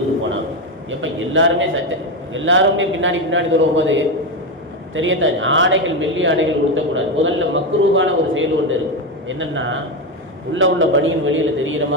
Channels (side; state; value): both; normal; correlation 0.12